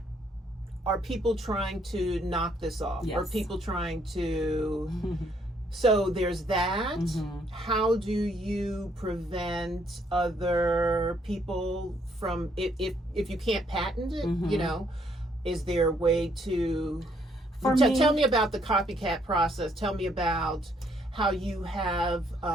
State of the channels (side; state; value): both; normal; correlation 0.69